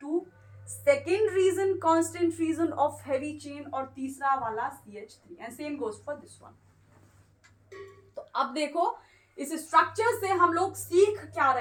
second region constant region of heavy chain, और तीसरा वाला CH3, and same goes for this one. तो अब देखो इस स्ट्रक्चर से हम लोग सीख क्या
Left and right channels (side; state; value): both; identical; correlation 1.00